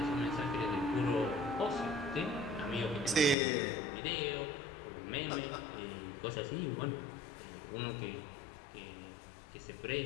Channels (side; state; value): right; drops out; at 3.4 s